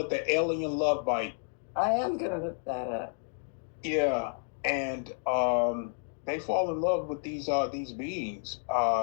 it the alien love bite. I am gonna look that up. Yeah, and they fall in love with these beings.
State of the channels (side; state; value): right; silent; digital silence